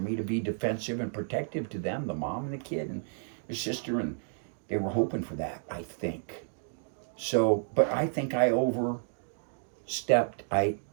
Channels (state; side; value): silent; left; digital silence